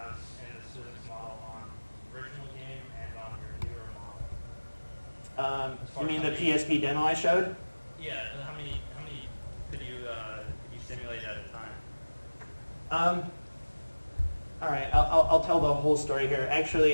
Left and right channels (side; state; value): both; inverted; correlation -1.00